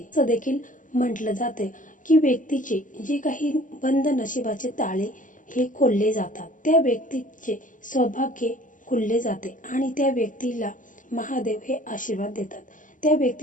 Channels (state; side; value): late; right; 0.38 ms